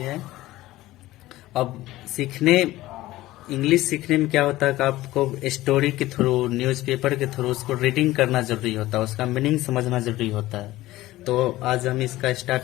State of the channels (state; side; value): quieter; right; 16.8 dB